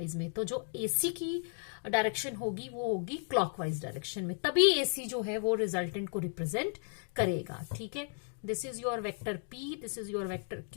में, तो जो AC की डायरेक्शन होगी वो होगी क्लॉकवाइज डायरेक्शन में, तभी AC जो है वो रिजल्टेंट को रिप्रेजेंट करेगा. ठीक है, this is your vector P, this is your vector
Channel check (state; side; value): silent; right; 55 dB below the other